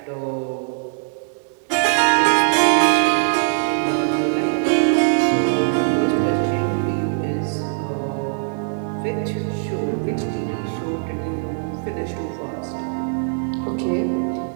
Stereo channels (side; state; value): left; silent; 60 dB below the other